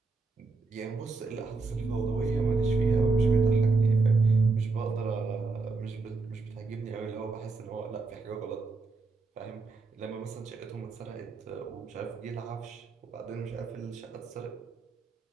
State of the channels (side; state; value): left; quieter; 4.0 dB